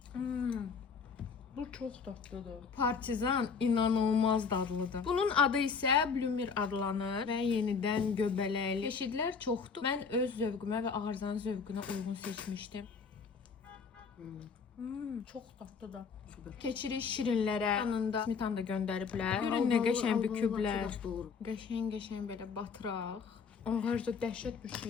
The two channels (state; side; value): quieter; right; 5.5 dB